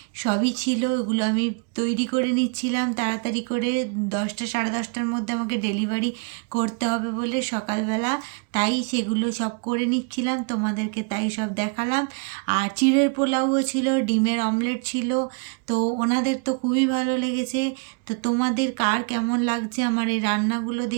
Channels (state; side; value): quieter; left; 37.3 dB